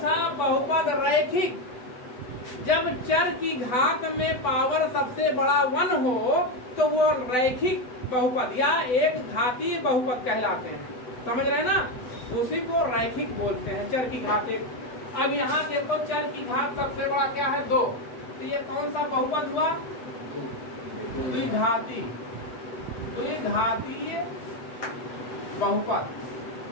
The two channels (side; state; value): right; late; 8.0 ms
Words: बहुपद रैखिक, जब चर की घात में पावर सबसे बड़ा 1 हो तो वो रैखिक बहुपद या एक घातीय बहुपद कहलाते हैं। समझ रहे हैं ना, उसी को रैखिक बोलते हैं, चर की घात 1। अब यहाँ देखो चर की घात सबसे बड़ा क्या है, 2, तो ये कौन सा बहुपद हुआ, द्विघातीय बहुपद।